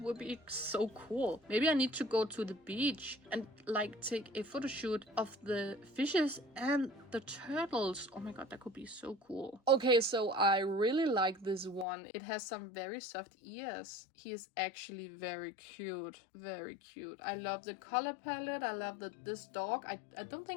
would be so cool. Maybe I need to go to the beach and like take a photo shoot of the fishes and the turtles. Oh my god, that could be so cool. Okay, so I really like this one. It has some very soft ears. He is actually very cute. Very cute. I love the color palette. I love this dog. I don't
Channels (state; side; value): drops out; right; at 11.9 s